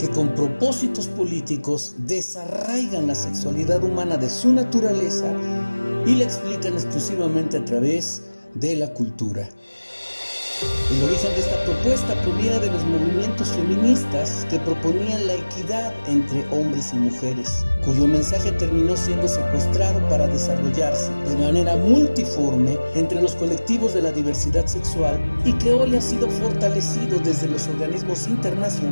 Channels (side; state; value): both; inverted; correlation -1.00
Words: con propósitos políticos desarraigan la sexualidad humana de su naturaleza y la explican exclusivamente a través de la cultura. El origen de esta propuesta proviene de los movimientos feministas que proponían la equidad entre hombres y mujeres, cuyo mensaje terminó siendo secuestrado para desarrollarse de manera multiforme entre los colectivos de la diversidad sexual y que hoy ha sido fortalecido desde los organismos